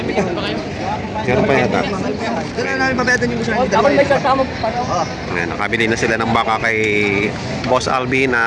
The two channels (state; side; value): identical; both; correlation 1.00